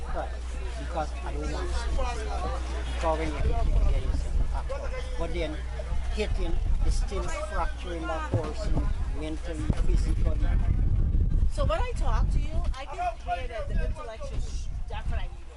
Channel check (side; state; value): both; identical; correlation 1.00